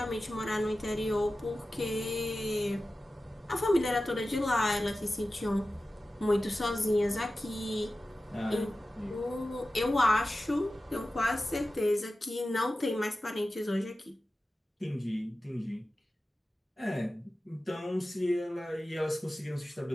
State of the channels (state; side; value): normal; both; correlation 0.95